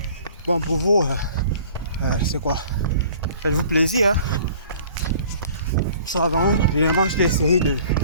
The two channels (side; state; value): both; inverted; correlation -0.50